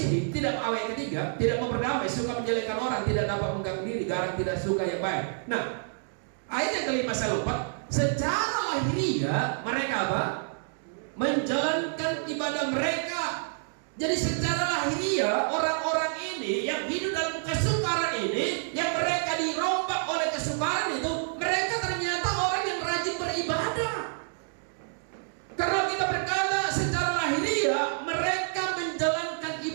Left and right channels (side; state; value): left; silent; digital silence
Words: tidak awet ketiga, tidak mau berdamai, suka menjelekkan orang, tidak dapat mengganggu diri, garang tidak suka yang baik. Nah, ayat yang kelima saya lupa. Secara lahiriah mereka apa? Menjalankan ibadah mereka. Jadi secara lahiriah orang-orang ini yang hidup dalam kesukaran ini, yang mereka dirombak oleh kesukaran itu, mereka ternyata orang yang rajin beribadah. Karena kita berkata secara lahiriah mereka menjalankan